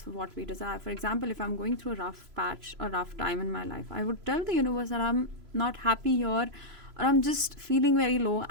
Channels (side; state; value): left; late; 3.0 ms